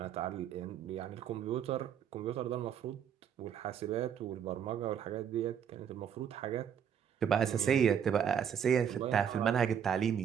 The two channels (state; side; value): quieter; left; 8.4 dB